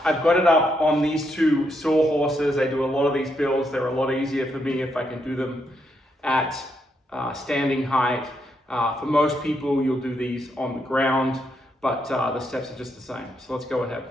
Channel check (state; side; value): normal; both; correlation 0.79